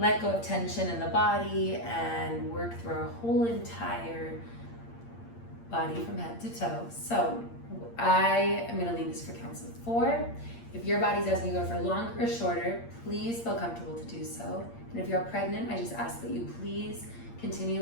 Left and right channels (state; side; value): late; right; 8.7 ms